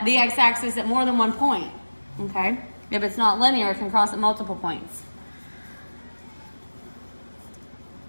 the x-axis at more than one point. Okay, if it's not linear, it can cross at multiple points.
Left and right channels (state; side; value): inverted; both; correlation -1.00